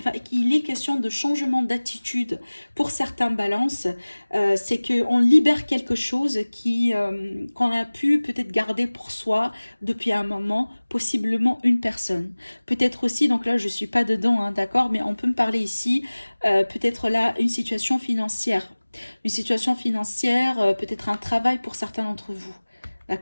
est question de changement d'attitude pour certains balances. C'est qu'on libère quelque chose qu'on a pu peut-être garder pour soi depuis un moment, possiblement une personne. Peut-être aussi, donc là, je ne suis pas dedans, hein, d'accord, mais on peut me parler ici, peut-être là, une situation financière. Une situation financière, peut-être un travail pour certains d'entre vous.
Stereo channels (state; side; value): inverted; both; correlation -1.00